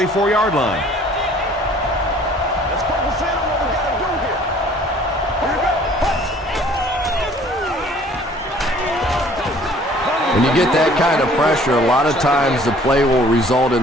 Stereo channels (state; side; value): normal; both; correlation 0.54